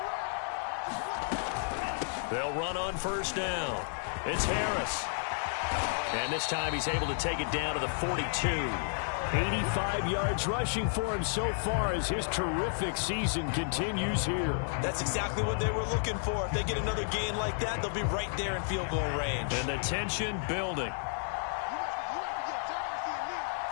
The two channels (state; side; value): silent; right; digital silence